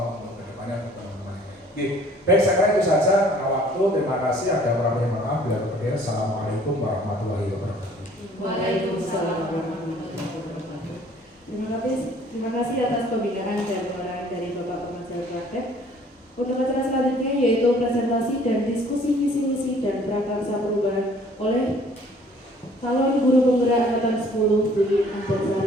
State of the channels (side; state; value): both; normal; correlation 0.56